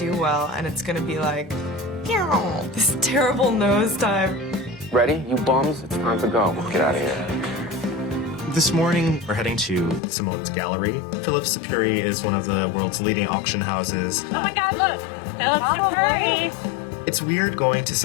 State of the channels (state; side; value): drops out; right; at 10.0 s